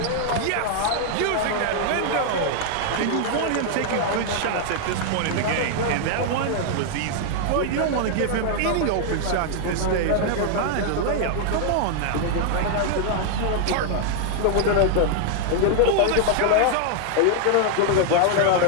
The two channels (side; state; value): both; different; correlation 0.00